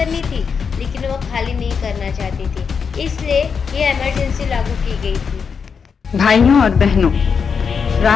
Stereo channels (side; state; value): right; quieter; 6.1 dB